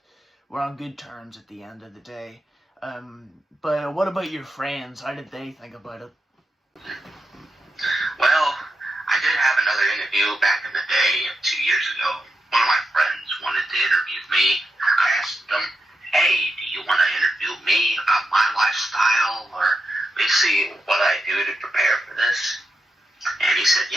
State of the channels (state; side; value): normal; both; correlation 0.87